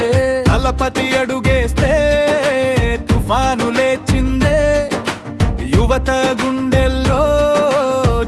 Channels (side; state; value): both; identical; correlation 1.00